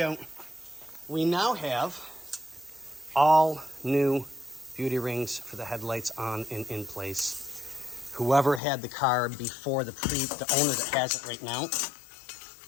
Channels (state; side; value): drops out; right; at 8.6 s